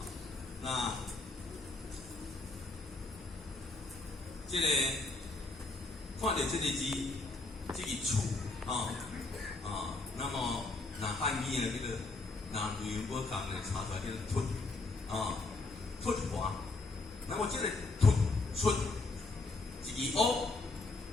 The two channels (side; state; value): right; quieter; 3.4 dB